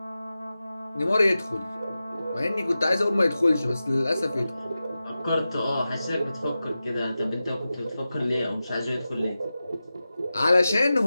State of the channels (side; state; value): both; inverted; correlation -0.94